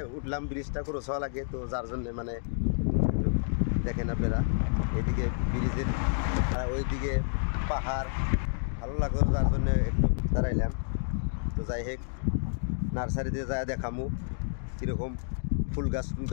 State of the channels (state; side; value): silent; right; digital silence